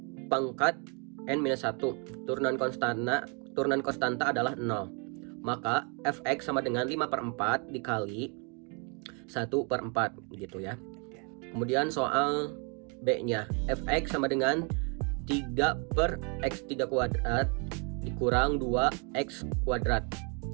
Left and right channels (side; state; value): left; quieter; 35.5 dB